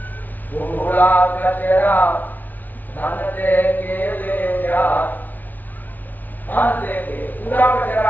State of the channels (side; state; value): right; late; 0.082 ms